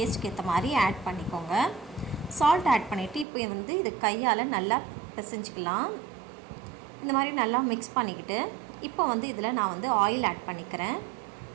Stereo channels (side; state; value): left; drops out; at 3.2 s